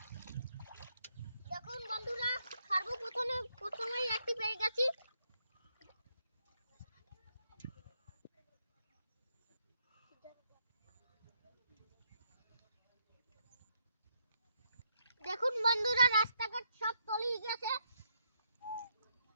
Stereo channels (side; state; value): both; inverted; correlation -0.75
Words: দেখুন বন্ধুরা, প্রথমেই একটি পেয়ে গেছি। দেখুন বন্ধুরা, রাস্তাঘাট সব তলিয়ে গেছে।